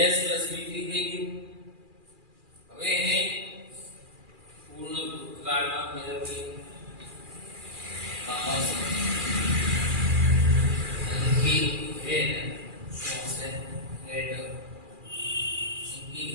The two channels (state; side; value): late; left; 2.4 ms